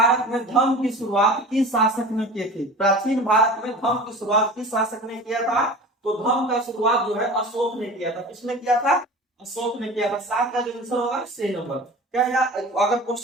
में धर्म की शुरुआत किस शासक ने की थी? प्राचीन भारत में धर्म की शुरुआत किस शासक ने किया था? तो धर्म का शुरुआत जो है अशोक ने किया था। किसने किया था? अशोक ने किया था। 7 का जो आंसर होगा सी नंबर। क्या अगर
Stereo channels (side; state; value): both; normal; correlation 0.37